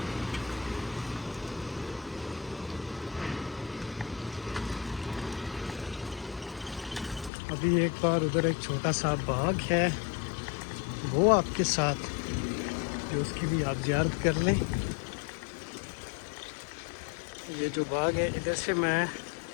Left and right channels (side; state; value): right; drops out; at 7.3 s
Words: अभी एक बार उधर एक छोटा सा बाग है, वो आपके साथ, जो उसकी भी आप ज़ियारत कर लें। ये जो बाग है, इधर से मैं